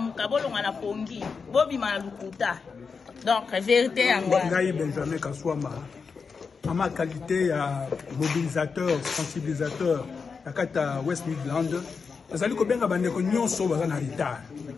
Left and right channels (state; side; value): quieter; right; 5.3 dB